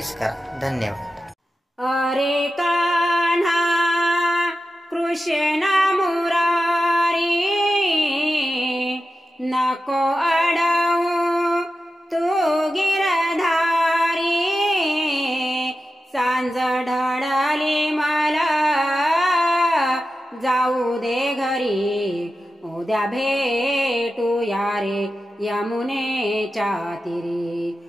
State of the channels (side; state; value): both; normal; correlation 0.92